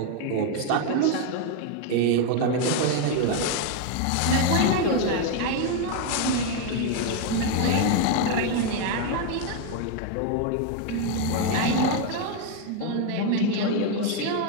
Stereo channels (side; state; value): both; different; correlation 0.01